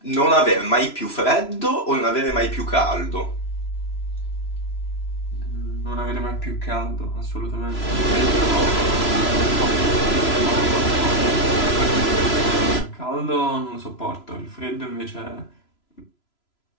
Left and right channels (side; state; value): right; late; 3.0 ms